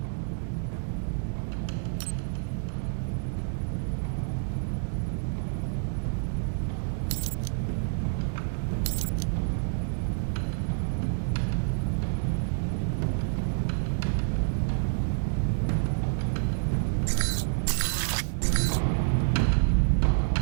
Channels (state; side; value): silent; left; digital silence